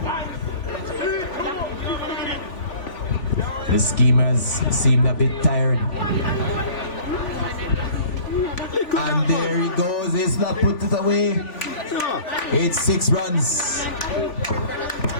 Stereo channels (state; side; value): late; right; 3.5 ms